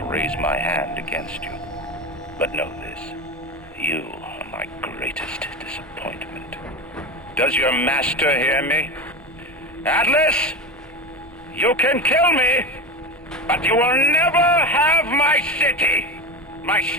raise my hand against you. But know this, you are my greatest disappointment. Does your master hear me? Atlas, you can kill me, but you will never have my city. My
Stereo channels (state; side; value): normal; both; correlation 0.23